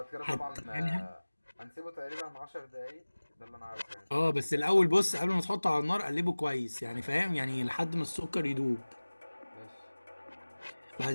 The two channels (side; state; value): both; inverted; correlation -1.00